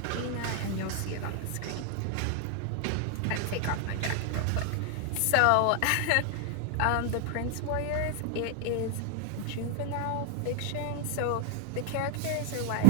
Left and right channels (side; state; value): both; different; correlation 0.01